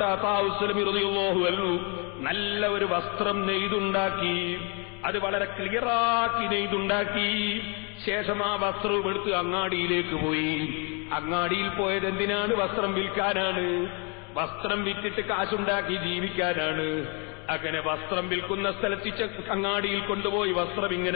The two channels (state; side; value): quieter; right; 33.2 dB